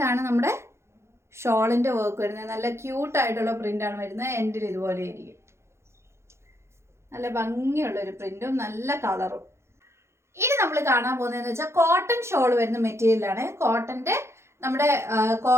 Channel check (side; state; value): left; late; 0.13 ms